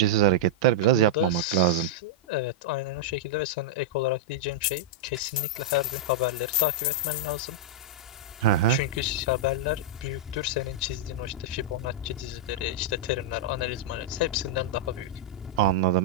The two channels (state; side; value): normal; both; correlation -0.07